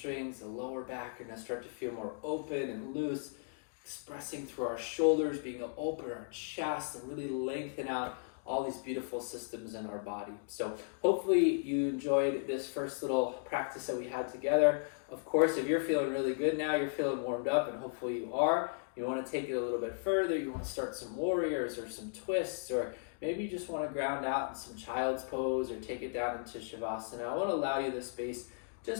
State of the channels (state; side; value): silent; right; digital silence